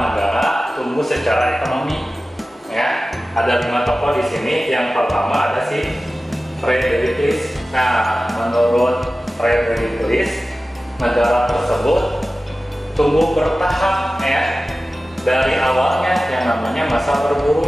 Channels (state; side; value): normal; both; correlation 0.96